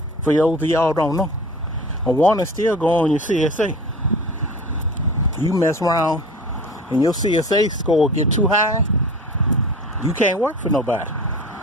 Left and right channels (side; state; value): both; normal; correlation 0.38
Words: For those of y'all don't know, a warning still go on your CSA. You mess around and your CSA score get too high, you can't work for nobody.